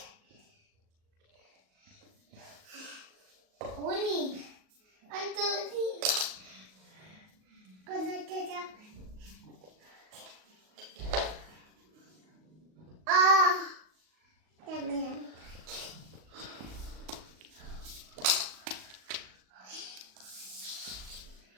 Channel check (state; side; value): late; left; 38 ms